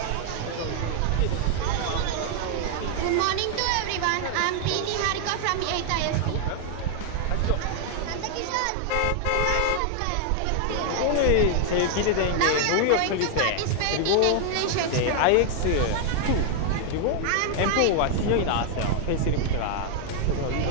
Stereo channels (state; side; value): different; both; correlation 0.00